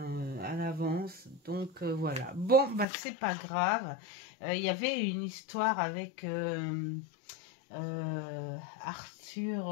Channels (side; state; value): right; drops out; at 2.9 s